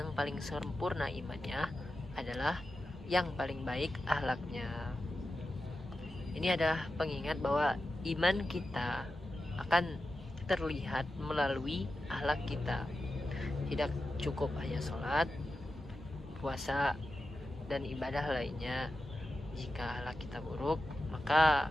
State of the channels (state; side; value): normal; both; correlation 0.91